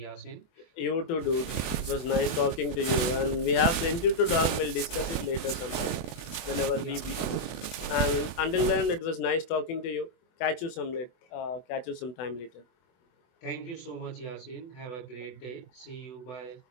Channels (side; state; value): right; late; 24 ms